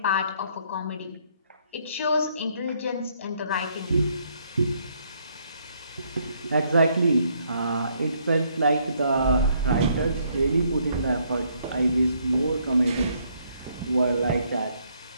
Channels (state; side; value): inverted; both; correlation -0.69